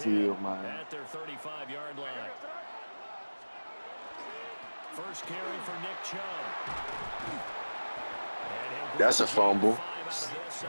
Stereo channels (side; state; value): both; inverted; correlation -1.00